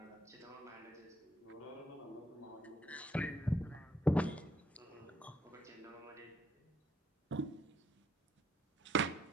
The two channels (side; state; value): both; normal; correlation 0.71